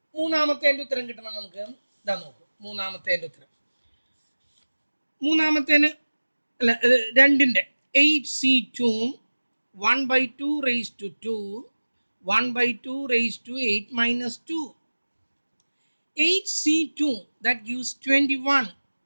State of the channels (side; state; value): both; inverted; correlation -1.00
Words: മൂന്നാമത്തെ എൻ്റെ ഉത്തരം കിട്ടണം നമുക്ക്. ഇതാ നോക്കൂ, മൂന്നാമത്തെ എൻ്റെ ഉത്തരം. മൂന്നാമത്തേന് അല്ല, രണ്ടിൻ്റെ 8C2 1/2 raise to 2 1/2 raise to 8 minus 2. 8C2 that gives 21.